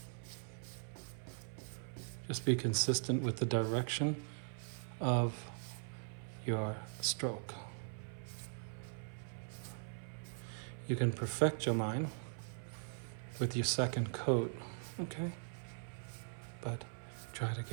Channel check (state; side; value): silent; left; 51 dB below the other